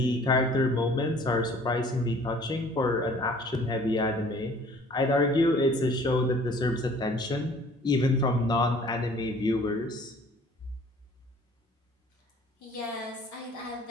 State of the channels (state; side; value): normal; both; correlation 0.52